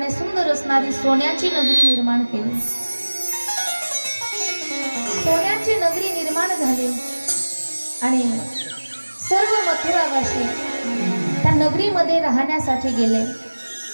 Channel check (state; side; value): inverted; both; correlation -1.00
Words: सुंदर असणारी सोन्याची नगरी निर्माण केली. सोन्याची नगरी निर्माण झाली आणि सर्व मथुरावासी त्या नगरीमध्ये राहण्यासाठी गेले.